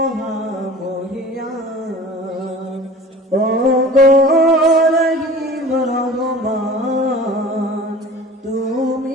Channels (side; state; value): both; normal; correlation 0.42